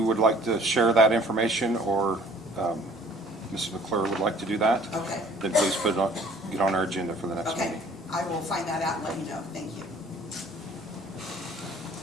would like to share that information, or Mrs. McClure would like to do that, Okay. then please get on our agenda for the next Okay, meeting. I will find that out and let you know. Thank you.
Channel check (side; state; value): both; normal; correlation 0.54